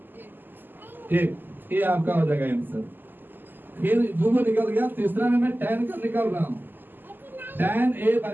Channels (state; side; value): late; left; 0.091 ms